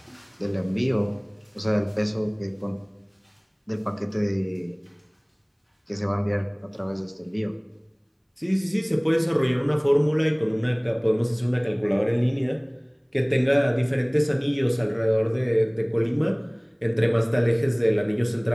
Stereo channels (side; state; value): both; identical; correlation 1.00